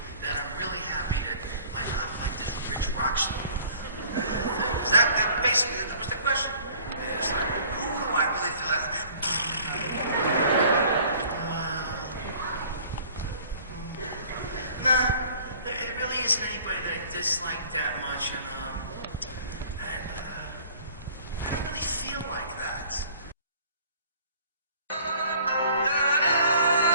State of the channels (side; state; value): both; inverted; correlation -0.51